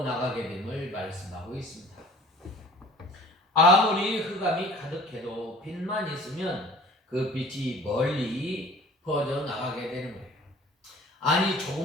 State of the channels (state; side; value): normal; both; correlation 0.47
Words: 나가게 됨을 말씀하고 있습니다. 아무리 흑암이 가득해도 빛만 있으면 그 빛이 멀리 퍼져 나가게 되는 거예요. 아니,